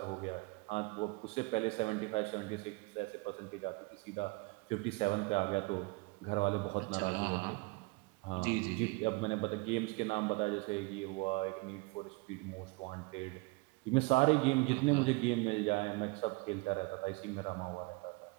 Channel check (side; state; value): left; quieter; 26.8 dB